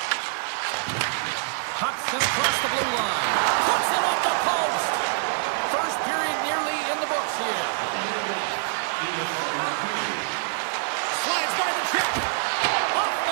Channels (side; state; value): left; silent; 61 dB below the other